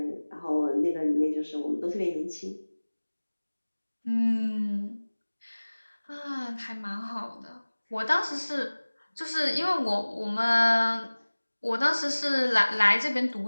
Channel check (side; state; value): both; inverted; correlation -1.00